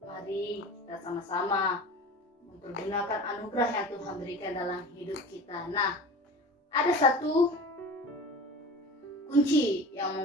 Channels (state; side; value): normal; both; correlation 0.35